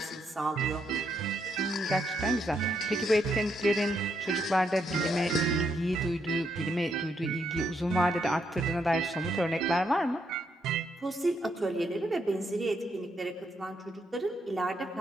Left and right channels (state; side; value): normal; both; correlation 0.77